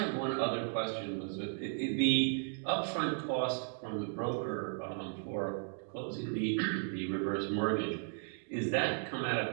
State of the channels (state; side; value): silent; left; 54 dB below the other